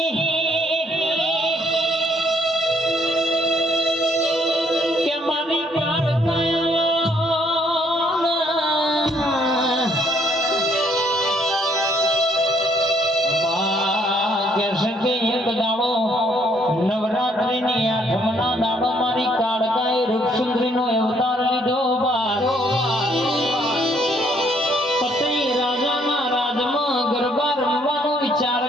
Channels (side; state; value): both; normal; correlation 0.67